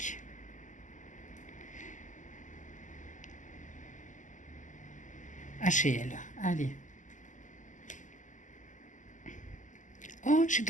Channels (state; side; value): late; right; 0.37 ms